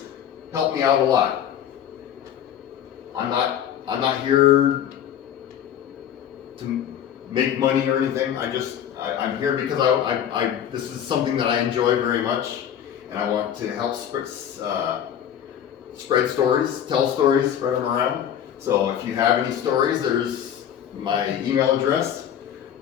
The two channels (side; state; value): right; quieter; 9.6 dB